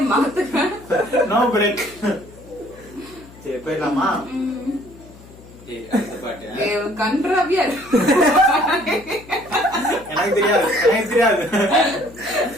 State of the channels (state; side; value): noise; left; hum, 21 dB below the sound